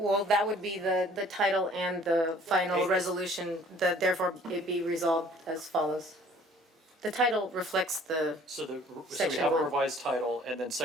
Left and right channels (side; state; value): both; normal; correlation 0.54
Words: that would be the title and the final resolution, therefore it be resolved as follows. The title reflects So we Section have a 1. revised title and then